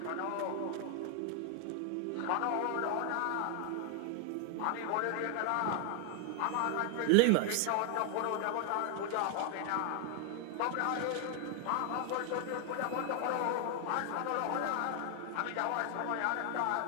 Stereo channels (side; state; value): both; different; correlation 0.00